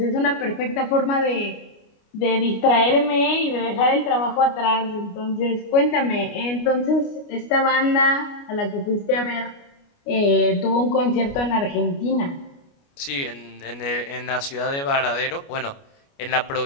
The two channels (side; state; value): right; late; 29 ms